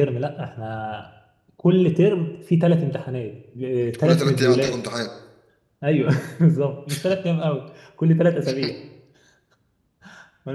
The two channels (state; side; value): identical; both; correlation 1.00